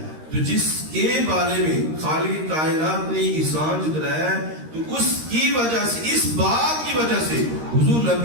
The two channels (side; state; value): left; late; 13 ms